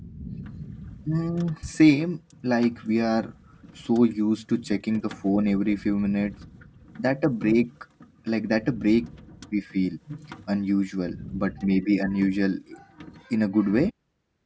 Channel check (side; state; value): both; identical; correlation 1.00